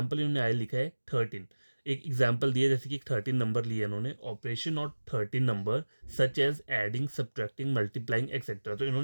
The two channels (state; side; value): inverted; both; correlation -1.00